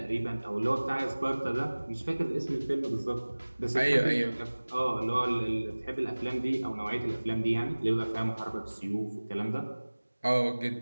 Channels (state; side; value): inverted; both; correlation -1.00